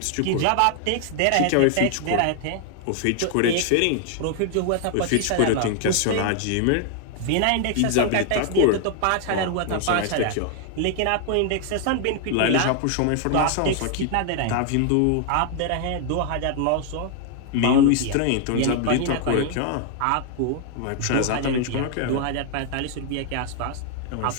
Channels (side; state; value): both; different; correlation 0.00